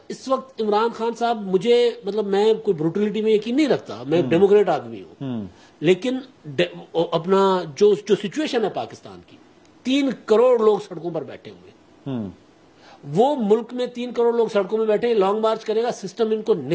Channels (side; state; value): both; identical; correlation 1.00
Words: اس وقت عمران خان صاحب، مجھے مطلب میں کوئی بروٹیلٹی میں یقین نہیں رکھتا، میں ڈیموکریٹ آدمی ہوں، لیکن اپنا جو سچویشن ہے پاکستان کی، 3 کروڑ لوگ سڑکوں پر بیٹھے ہوئے، وہ ملک میں 3 کروڑ لوگ سڑکوں میں بیٹھے، لانگ مارچ کرے گا، سسٹم ان کو